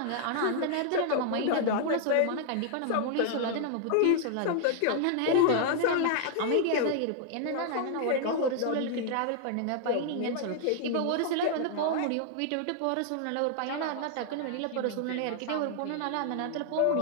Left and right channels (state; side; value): different; both; correlation 0.00